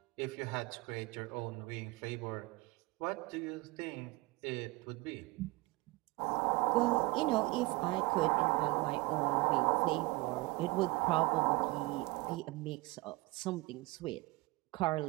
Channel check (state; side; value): quieter; left; 22.6 dB